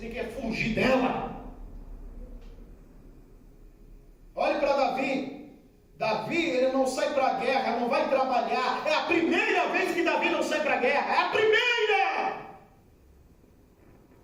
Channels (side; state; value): both; identical; correlation 1.00